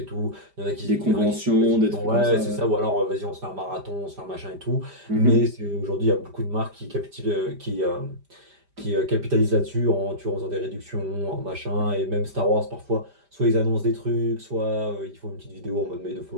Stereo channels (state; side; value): late; left; 5.0 ms